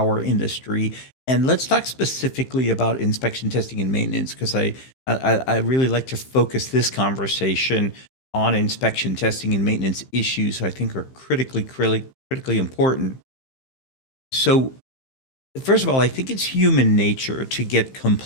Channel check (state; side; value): late; right; 15 ms